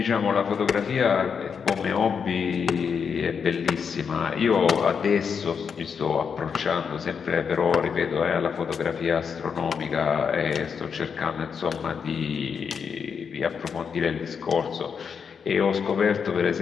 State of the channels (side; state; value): right; quieter; 6.5 dB